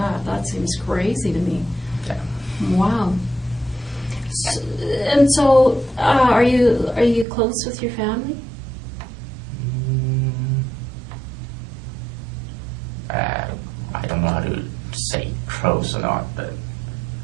That seems crazy to me. Yeah. Wow. And so, are you close with your family? I don't know how to say close or not, but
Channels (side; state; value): left; drops out; at 7.2 s